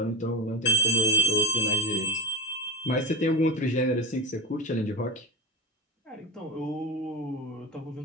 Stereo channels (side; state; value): both; normal; correlation 0.22